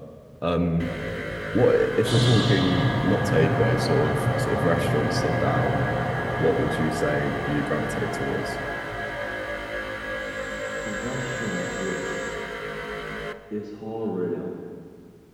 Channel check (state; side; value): identical; both; correlation 1.00